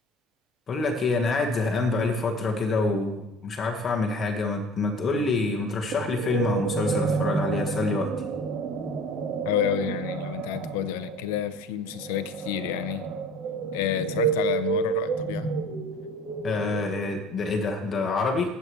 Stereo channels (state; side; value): normal; both; correlation 0.45